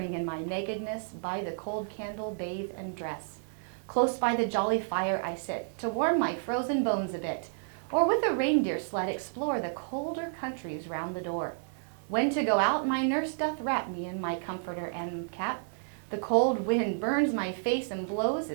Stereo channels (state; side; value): silent; left; digital silence